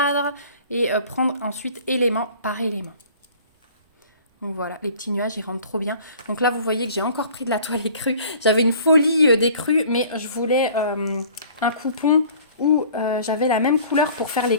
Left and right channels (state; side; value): inverted; both; correlation -0.49